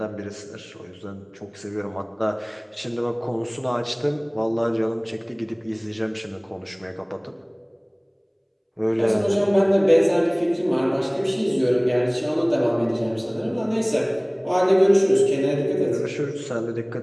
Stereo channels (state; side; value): identical; both; correlation 1.00